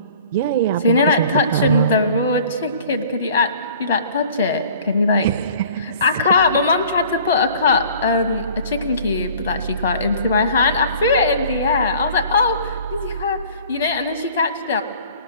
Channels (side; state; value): both; inverted; correlation -0.49